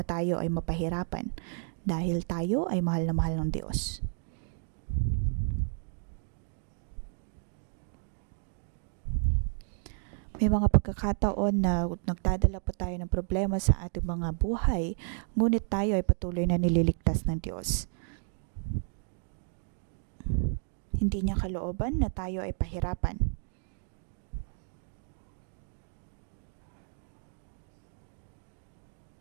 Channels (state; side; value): silent; left; 57 dB below the other